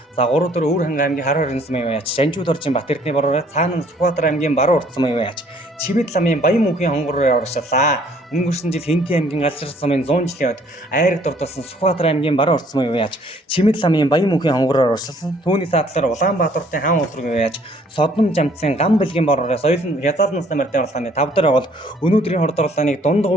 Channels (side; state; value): both; normal; correlation 0.60